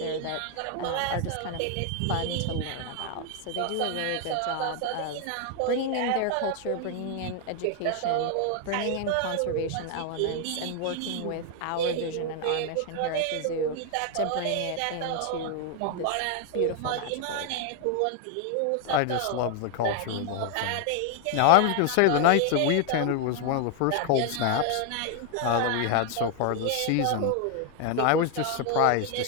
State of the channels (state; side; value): different; both; correlation 0.00